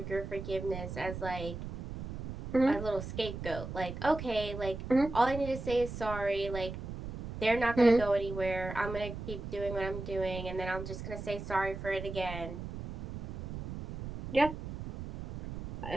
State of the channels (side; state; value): right; noise; rumble, 8 dB below the sound